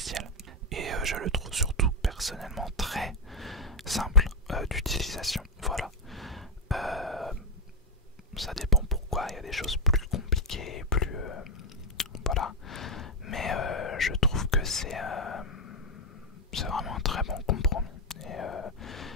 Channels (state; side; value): normal; both; correlation 0.02